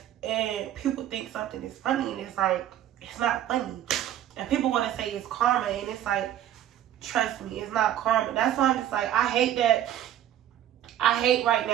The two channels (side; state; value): left; quieter; 11.6 dB